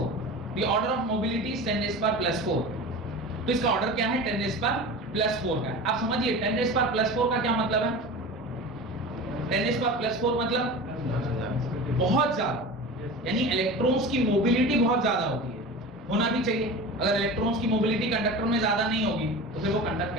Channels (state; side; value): normal; both; correlation 0.32